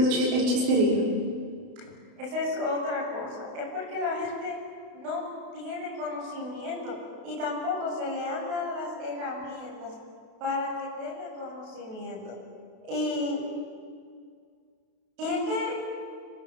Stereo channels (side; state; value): left; late; 32 ms